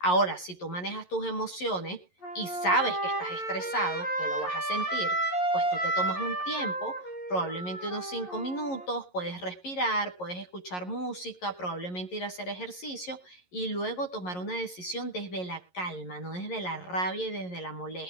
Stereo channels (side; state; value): right; late; 11 ms